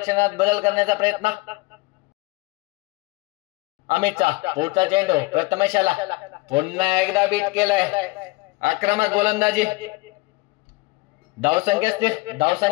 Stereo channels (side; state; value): right; quieter; 23.6 dB